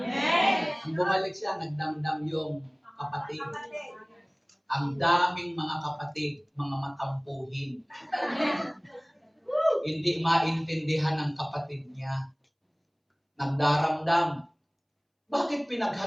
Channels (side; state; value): both; identical; correlation 1.00